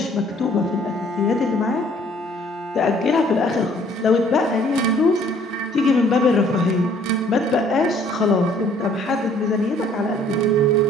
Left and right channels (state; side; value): normal; both; correlation 0.59